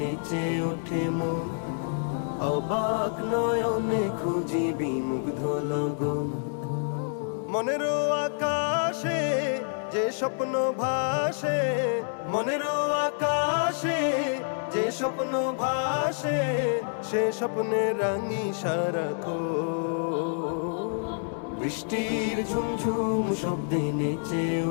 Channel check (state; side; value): silent; right; 60 dB below the other